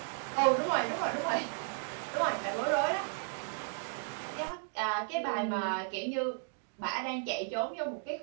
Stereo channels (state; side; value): silent; left; 55 dB below the other